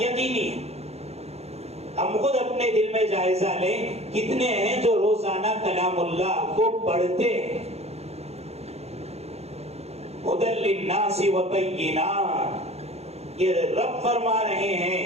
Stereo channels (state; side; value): late; left; 0.31 ms